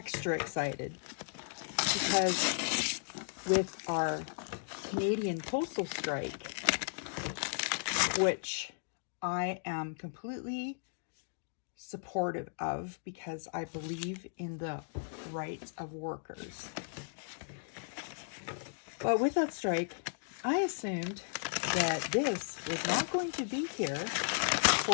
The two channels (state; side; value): silent; right; digital silence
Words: excited, because with our Canadian postal strike, which I am completely supportive of because I believe in the rights of workers. But with that strike, I assumed that this was not going to be here